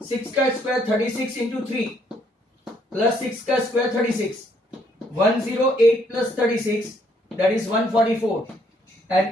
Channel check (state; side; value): normal; both; correlation 0.69